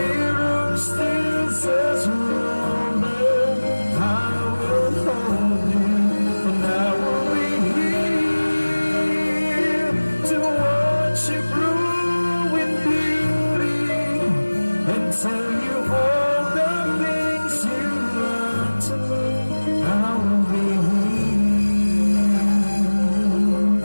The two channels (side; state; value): both; inverted; correlation -1.00